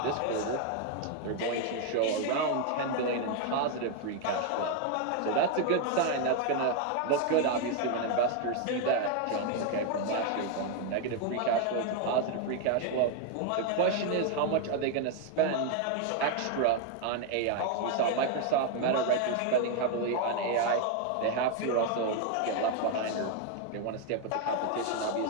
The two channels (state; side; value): different; both; correlation 0.01